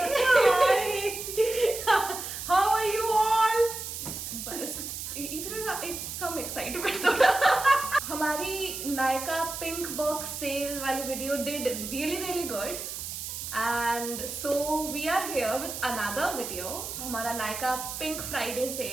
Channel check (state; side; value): noise; right; hiss, 7 dB below the sound